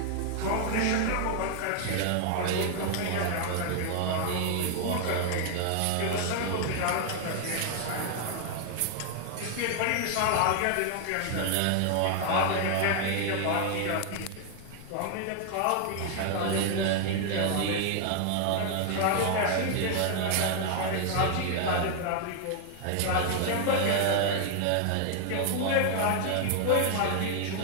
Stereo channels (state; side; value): different; both; correlation 0.00